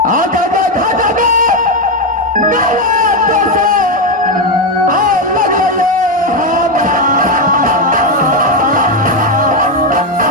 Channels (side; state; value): both; normal; correlation 0.07